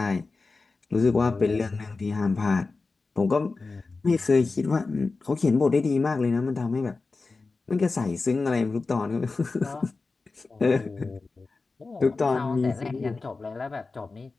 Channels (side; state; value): right; quieter; 3.9 dB